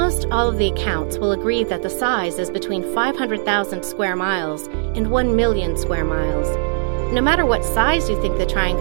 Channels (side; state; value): left; silent; digital silence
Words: all of the accounts will agree that the size is between 500,000 square miles and 1 million square miles. No matter what size you think the